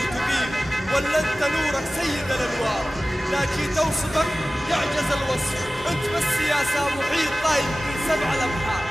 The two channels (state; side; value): normal; both; correlation 0.97